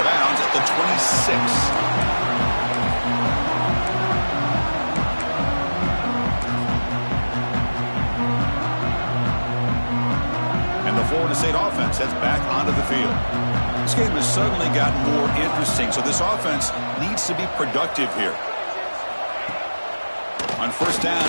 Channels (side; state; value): both; inverted; correlation -1.00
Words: bounds at the 26. Florida State offense heads back onto the field. This game has suddenly gotten more interesting, so this offense needs to be productive here. On first down,